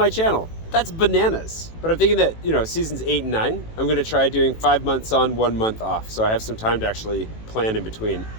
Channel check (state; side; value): late; right; 18 ms